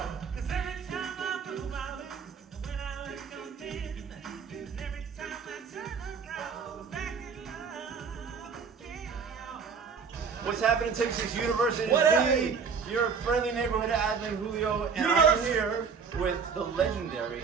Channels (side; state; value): left; quieter; 5.9 dB